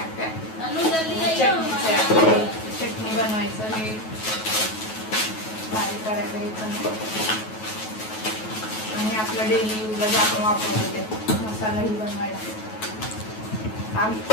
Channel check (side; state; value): right; late; 9.3 ms